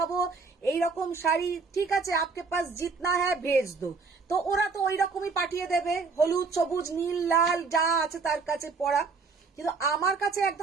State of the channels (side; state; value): left; quieter; 4.6 dB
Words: এইরকম শাড়ি, ঠিক আছে আপকে পাস জিতনা হ্যাঁ ভেজ দো, তো ওরা তো ওই রকমই পাঠিয়ে দেবে, হলুদ সবুজ নীল লাল যা আছে তার কাছে পড়া। কিন্তু আমার কাছে